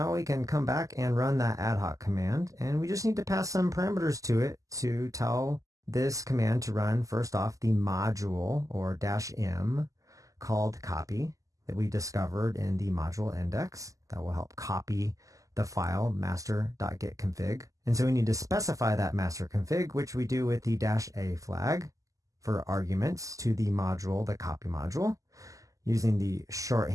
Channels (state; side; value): late; left; 0.16 ms